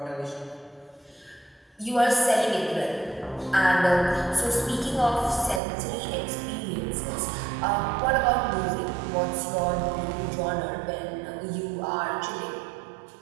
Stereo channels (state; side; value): drops out; left; at 5.6 s